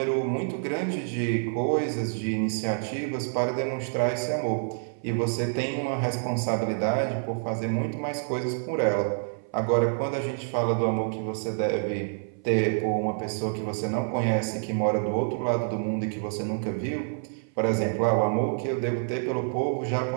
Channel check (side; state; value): left; silent; 60 dB below the other